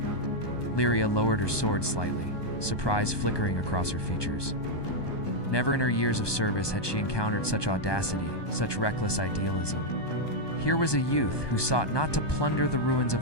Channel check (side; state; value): right; late; 1.2 ms